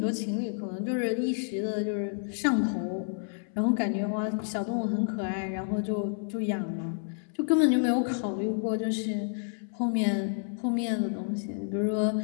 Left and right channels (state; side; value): silent; right; 58 dB below the other